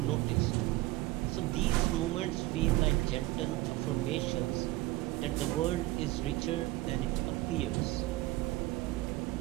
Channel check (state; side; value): quieter; left; 18.4 dB